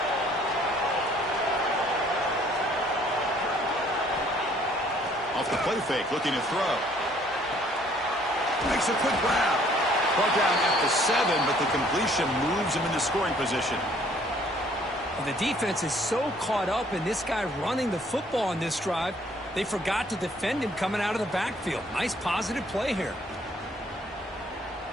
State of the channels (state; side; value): normal; both; correlation 0.61